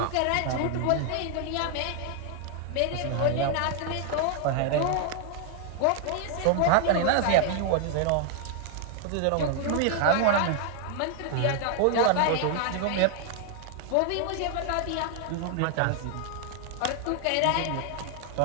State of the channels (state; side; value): different; both; correlation 0.00